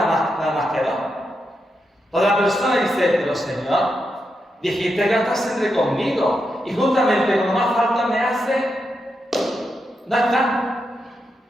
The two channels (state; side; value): normal; both; correlation 0.85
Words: más que 2. Toda la persona dice: pero Señor, dijiste que estás siempre conmigo, y justamente cuando más falta me hace, no está.